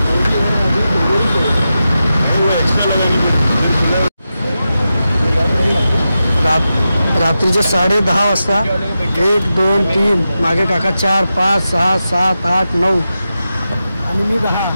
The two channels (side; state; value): both; inverted; correlation -0.90